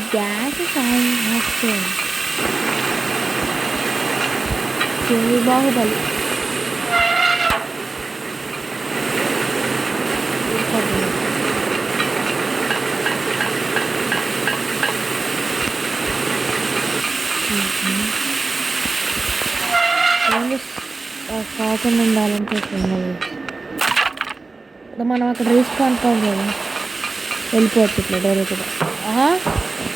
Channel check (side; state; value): left; quieter; 3.7 dB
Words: గ్యాస్ బాహుబలి కాకుండా ఉండాలంటే ఇప్పుడు మనం అక్కడ రిస్క్ అనుకోం కదా, వెళ్ళిపోవచ్చు ఇట్లా డైరెక్ట్గా.